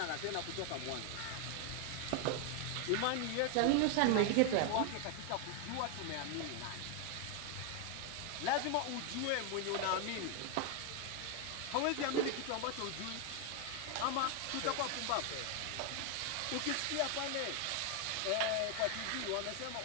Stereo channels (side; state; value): both; different; correlation 0.01